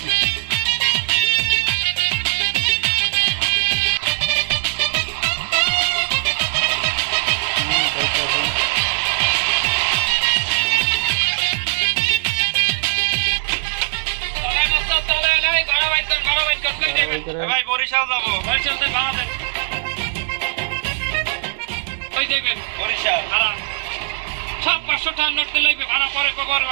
ভাই বরিশাল যাবো, বরিশাল থেকে ভাড়া দেন। ওই দেখবেন বরিশাল ভাড়া সব 500 টাকার নোট দিলে ভাড়া পরে কবর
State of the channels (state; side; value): silent; left; digital silence